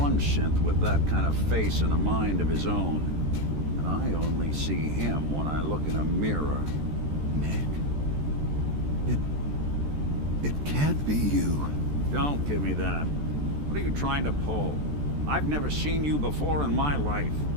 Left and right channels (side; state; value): left; late; 14 ms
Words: synth with that kind of face and a mind of his own. And I only see him when I look in a mirror. Nick? It can't be you. Don't give me that. What are you trying to pull? I've never seen you before in my life.